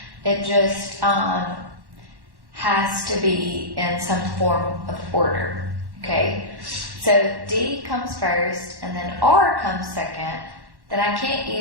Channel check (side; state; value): left; late; 1.1 ms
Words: It just has to be in some form of order. Okay, so if D comes first and then R comes second, then I can't